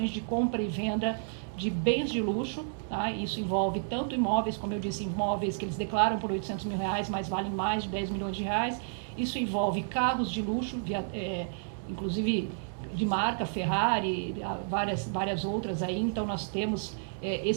de compra e venda de bens de luxo, tá? Isso envolve tanto imóveis, como eu disse, imóveis que eles declaram por R$800 mil, mas valem mais de 10 milhões de reais, Isso envolve carros de luxo, inclusive de marca, Ferrari, várias outras aí. Então, nós temos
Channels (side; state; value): left; silent; digital silence